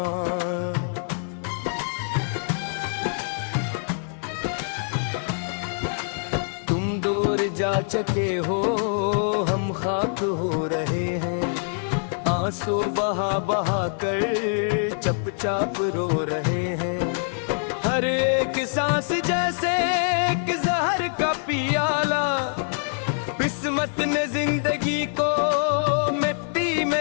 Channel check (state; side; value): silent; right; digital silence